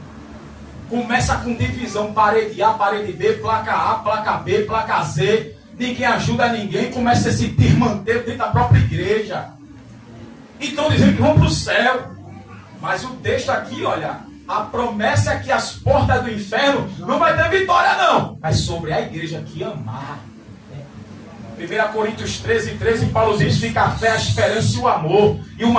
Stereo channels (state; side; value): identical; both; correlation 1.00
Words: Começa com divisão, parede A, parede B, placa A, placa B, placa Z. Ninguém ajuda ninguém, começa a se desmanter dentro da própria igreja. E estão dizendo que vão para o céu. Mas o texto aqui, olha, a promessa é que as portas do inferno não vai ter vitória não. Mas sobre a igreja que amar. 1 Coríntios 13, Paulo diz, fica a fé, a esperança e o amor. E o